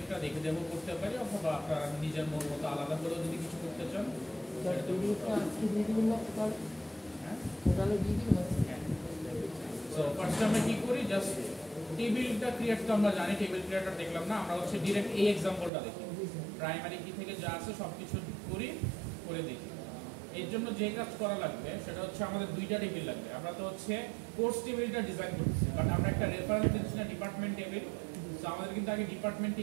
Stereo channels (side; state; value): left; drops out; at 15.7 s